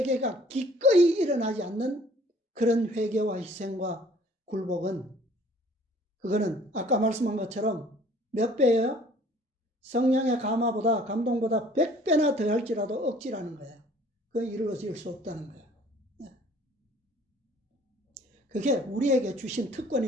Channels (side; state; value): both; normal; correlation 0.55